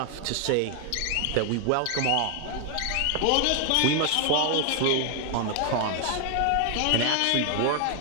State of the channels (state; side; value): different; both; correlation 0.00